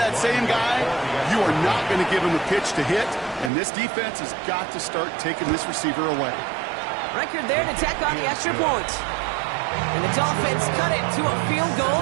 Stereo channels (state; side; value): drops out; left; at 3.5 s